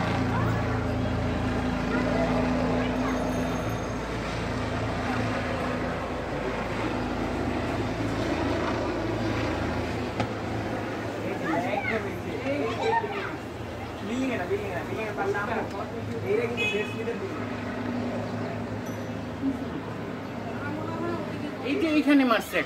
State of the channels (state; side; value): identical; both; correlation 1.00